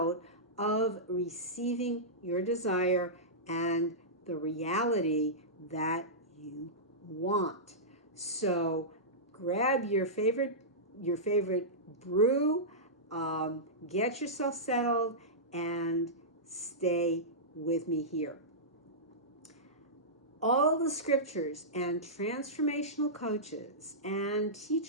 of receiving your desire and the reality that you want. So grab your favorite brew, get yourself settled, and stay with me here. All the scriptures and transformational coaches and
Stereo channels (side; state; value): both; normal; correlation -0.15